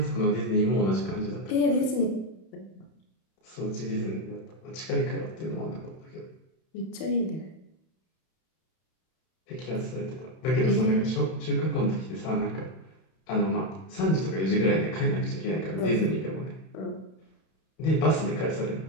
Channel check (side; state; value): right; late; 31 ms